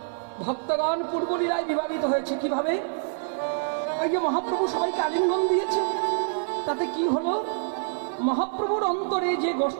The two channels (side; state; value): left; silent; 61 dB below the other